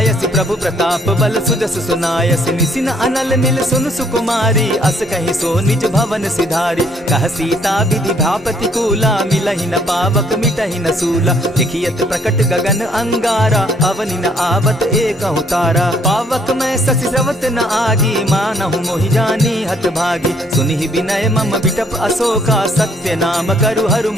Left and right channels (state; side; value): normal; both; correlation 0.65